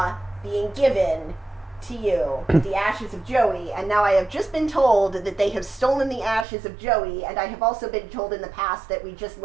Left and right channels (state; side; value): drops out; left; at 6.5 s